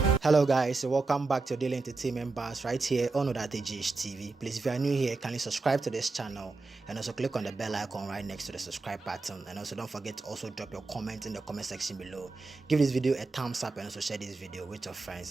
Hello guys, so welcome back to Daily Entertainment Bars right here on GH TV. Please, if you are new here, kindly subscribe to this channel and also click on the bell icon right next to the subscribe button, and also don't forget to also drop your comment in the comment section below. Give this video a thumbs up and also share this video with your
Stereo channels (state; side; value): quieter; left; 3.7 dB